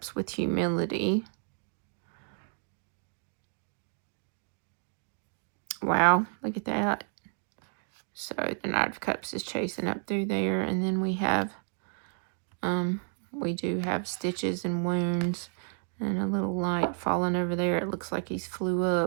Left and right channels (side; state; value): left; silent; 57 dB below the other